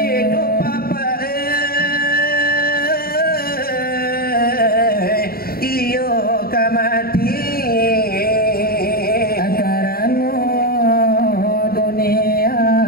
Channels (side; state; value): right; late; 0.44 ms